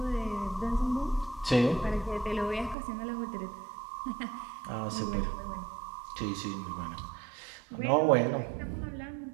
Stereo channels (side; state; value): left; drops out; at 2.8 s